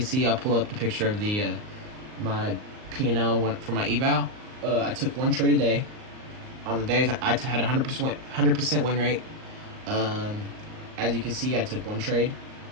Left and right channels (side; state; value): left; late; 38 ms